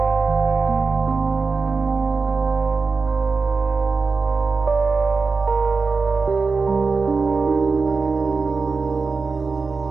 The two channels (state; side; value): quieter; left; 4.4 dB